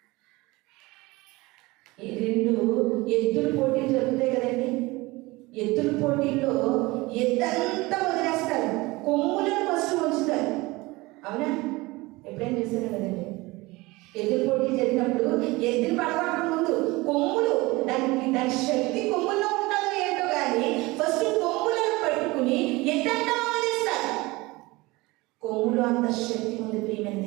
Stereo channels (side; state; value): left; quieter; 22.1 dB